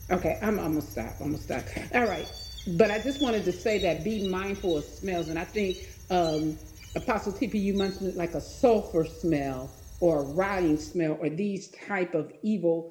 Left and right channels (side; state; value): both; identical; correlation 1.00